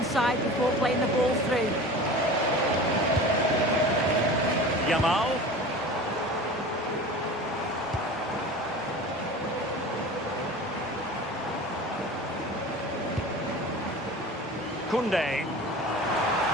side before playing the ball through. Yamal. Koundé.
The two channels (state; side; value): normal; both; correlation 0.36